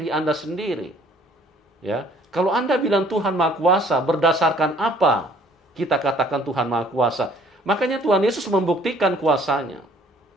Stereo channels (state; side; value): normal; both; correlation 0.58